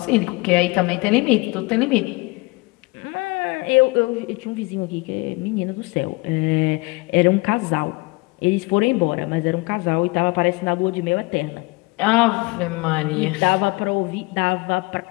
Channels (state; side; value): quieter; right; 25.4 dB